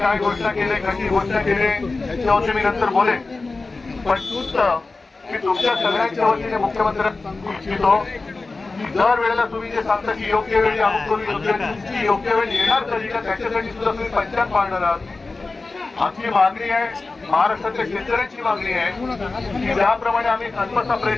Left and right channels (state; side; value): quieter; right; 3.6 dB